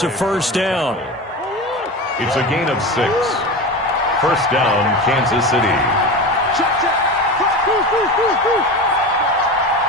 a first down. It's a gain of 6. First down, Kansas City.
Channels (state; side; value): normal; both; correlation 0.27